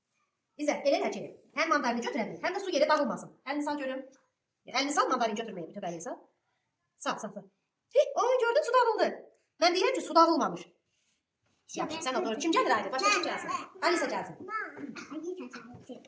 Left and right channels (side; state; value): both; identical; correlation 1.00